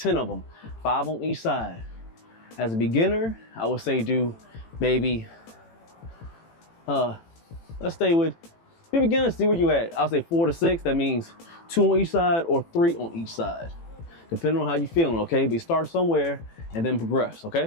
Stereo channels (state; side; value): late; right; 18 ms